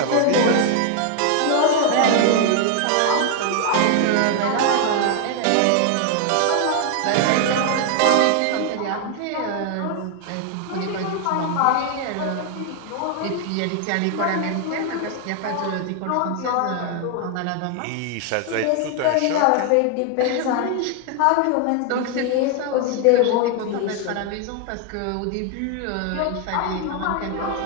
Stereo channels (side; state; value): both; different; correlation 0.00